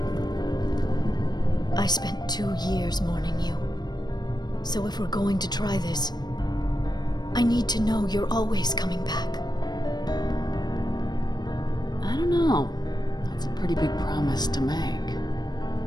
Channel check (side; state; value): right; late; 0.20 ms